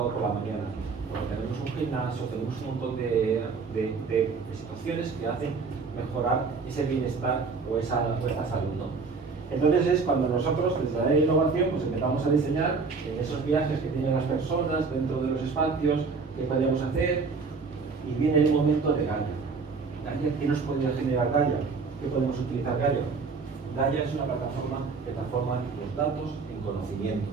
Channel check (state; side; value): quieter; left; 4.7 dB